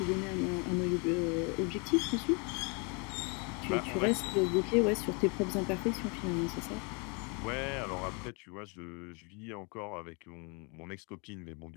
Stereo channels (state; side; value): quieter; right; 32.8 dB